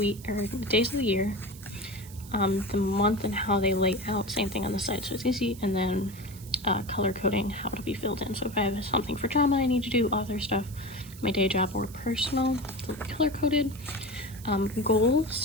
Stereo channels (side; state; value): right; noise; hiss, 19 dB below the sound